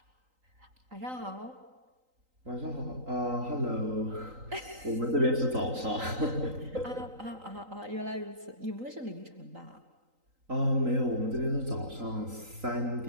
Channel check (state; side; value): late; left; 3.9 ms